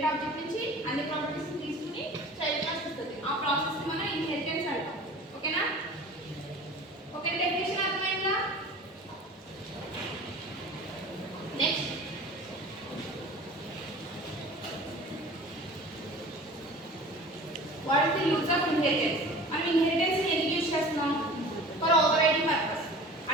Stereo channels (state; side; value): normal; both; correlation 0.41